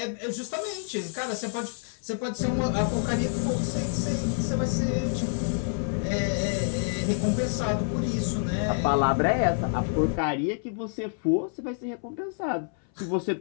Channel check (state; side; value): silent; right; 60 dB below the other